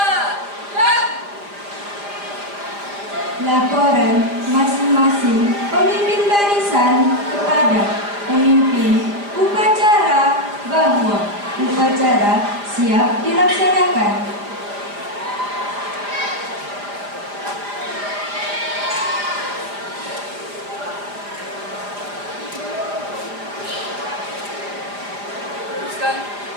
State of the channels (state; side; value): late; left; 5.0 ms